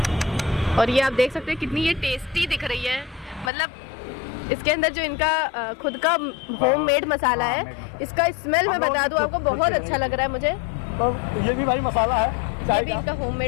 और ये आप देख सकते हैं कितनी ये टेस्टी दिख रही है। मतलब इसके अंदर जो इनका खुद का होममेड मसाला है, इसका स्मेल मैं बता दूं आपको, बहुत अच्छा लग रहा है मुझे। तो ये भी भाई मसाला है ये चाय भी का। इनका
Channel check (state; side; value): drops out; right; at 3.5 s